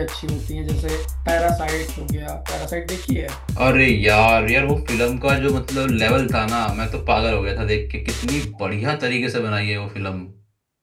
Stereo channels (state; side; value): identical; both; correlation 1.00